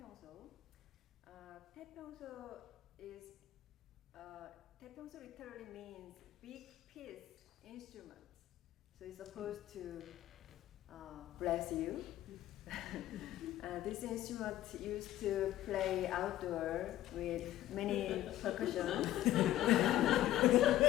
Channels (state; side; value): quieter; right; 13.8 dB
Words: 태평소 is 태평소 literally means big piece instrument. So it's supposed to bless you. This instrument used to play outdoor with many percussion.